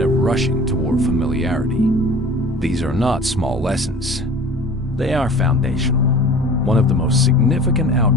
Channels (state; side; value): normal; both; correlation 0.43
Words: rushing toward familiarity. These are not small lessons. They are foundational. One of the most significant